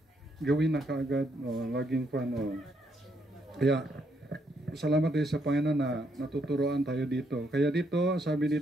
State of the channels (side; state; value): both; normal; correlation 0.75